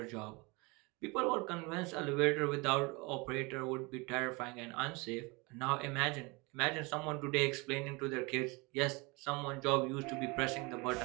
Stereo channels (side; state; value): left; quieter; 27.0 dB